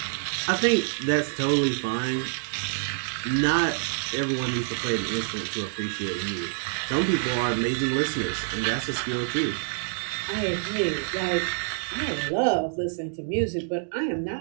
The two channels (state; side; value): silent; left; digital silence